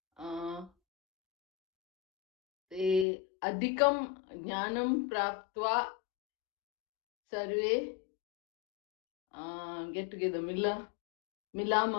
अधिकं ज्ञानं प्राप्त्वा सर्वे गेट टुगेदर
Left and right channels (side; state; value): right; drops out; at 3.1 s